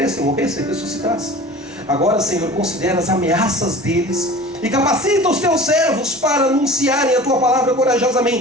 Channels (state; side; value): normal; both; correlation 0.40